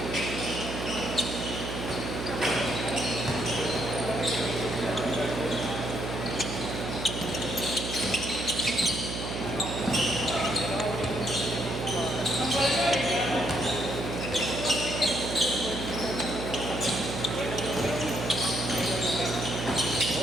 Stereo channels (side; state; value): right; noise; hum, 5 dB below the sound